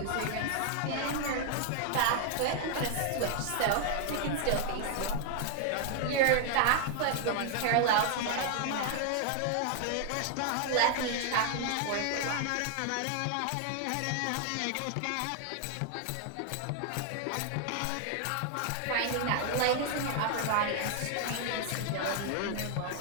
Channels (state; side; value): different; both; correlation 0.00